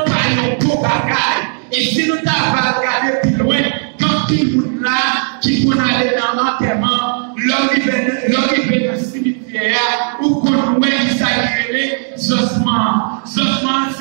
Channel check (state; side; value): silent; left; 58 dB below the other